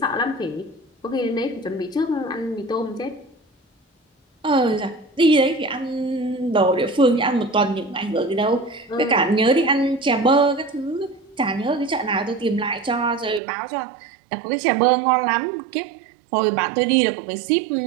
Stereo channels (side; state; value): left; drops out; at 13.4 s